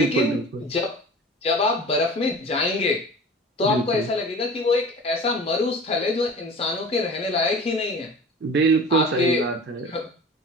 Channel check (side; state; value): both; normal; correlation 0.38